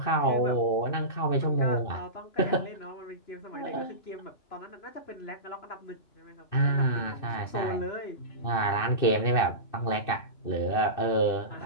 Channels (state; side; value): late; right; 2.6 ms